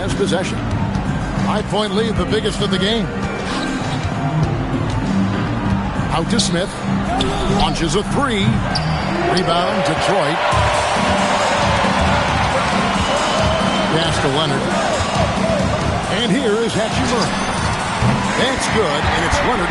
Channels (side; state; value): both; identical; correlation 1.00